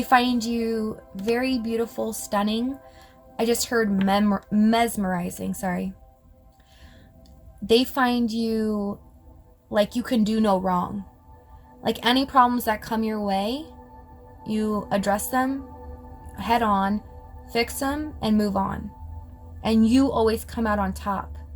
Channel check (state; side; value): identical; both; correlation 1.00